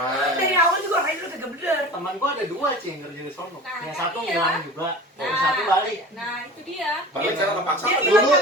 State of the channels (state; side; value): normal; both; correlation 0.37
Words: Dari awal juga orangnya udah kagak bener. Teman gua ada 2 sih yang kerja di sono. Nah, Yang kan satu iya. ngilang juga, yang Nah, satu balik. Nah, itu dia. Balik secara kepaksa. Dia kan? bilang Dulu-